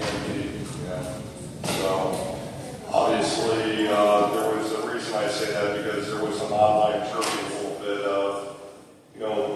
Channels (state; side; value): identical; both; correlation 1.00